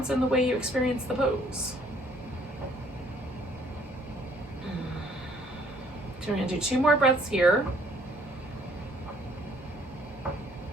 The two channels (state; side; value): normal; both; correlation 0.61